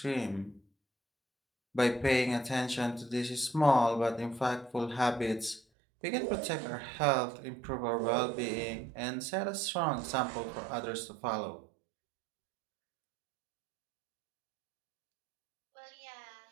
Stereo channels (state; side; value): drops out; left; at 5.6 s